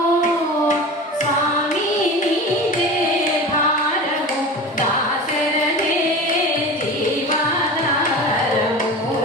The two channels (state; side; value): normal; both; correlation 0.32